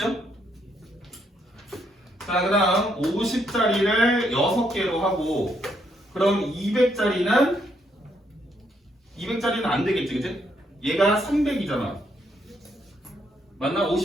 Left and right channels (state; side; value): normal; both; correlation 0.74